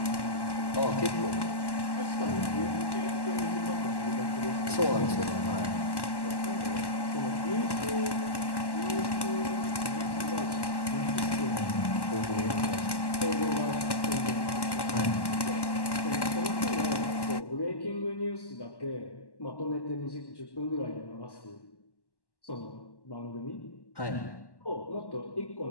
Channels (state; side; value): late; right; 1.1 ms